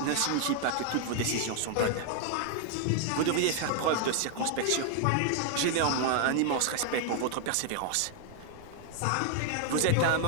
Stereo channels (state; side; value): different; both; correlation 0.00